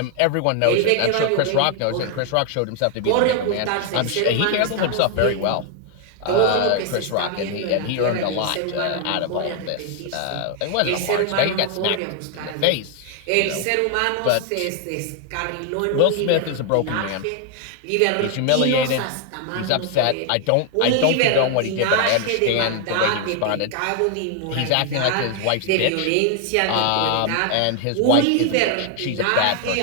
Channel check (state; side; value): different; both; correlation 0.00